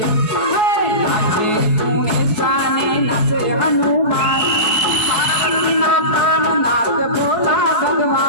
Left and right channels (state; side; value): late; right; 4.7 ms